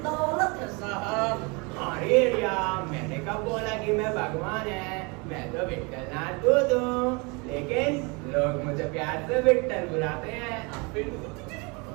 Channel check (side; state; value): left; quieter; 29.4 dB